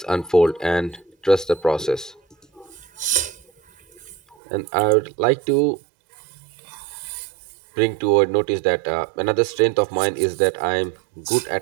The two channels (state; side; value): drops out; left; at 4.4 s